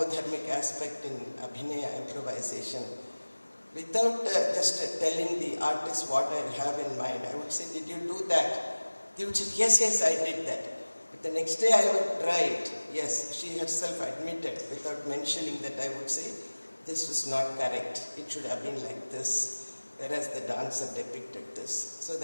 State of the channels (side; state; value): both; inverted; correlation -1.00